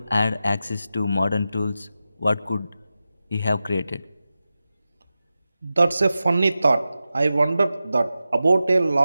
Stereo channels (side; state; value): both; inverted; correlation -0.93